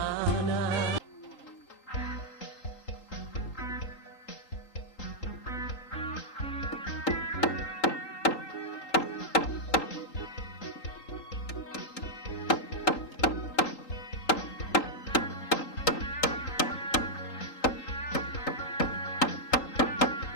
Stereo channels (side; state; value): right; late; 3.8 ms